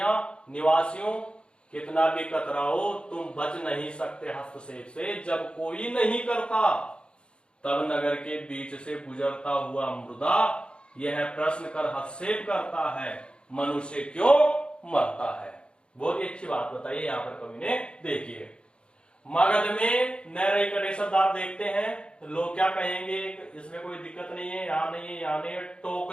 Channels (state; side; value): late; right; 0.054 ms